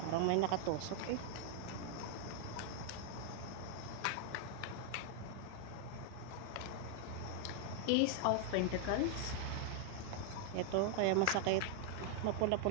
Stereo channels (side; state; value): both; different; correlation 0.00